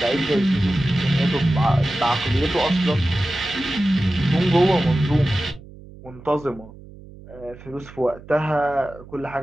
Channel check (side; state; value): right; noise; hum, 19 dB below the sound